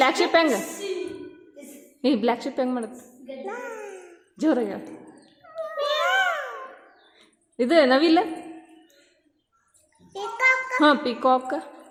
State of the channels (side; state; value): both; identical; correlation 1.00